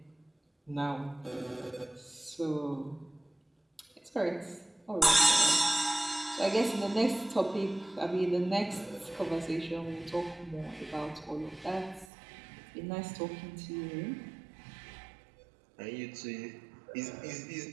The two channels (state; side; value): drops out; left; at 12.1 s